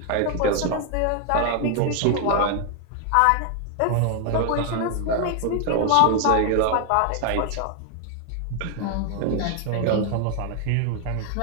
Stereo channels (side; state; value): both; different; correlation 0.00